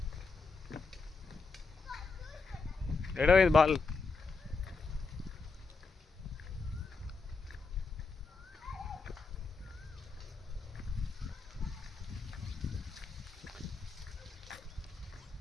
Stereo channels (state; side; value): quieter; right; 4.3 dB